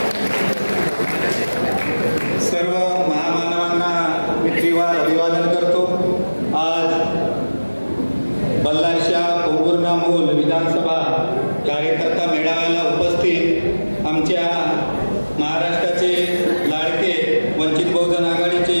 सर्व महामानवांना मी त्रिवार अभिवादन करतो. आज बल्लारशा पोंभुर्णा-मूल विधानसभा कार्यकर्ता मेळाव्याला उपस्थित आमच्या महाराष्ट्राचे लाडके वंचित बहुजन आघाडीचे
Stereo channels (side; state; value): both; inverted; correlation -1.00